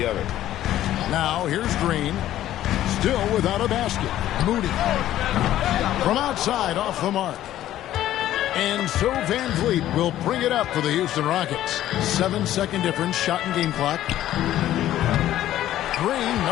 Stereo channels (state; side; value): quieter; right; 13.1 dB